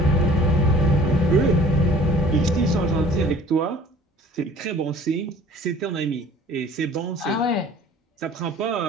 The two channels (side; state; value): both; normal; correlation 0.50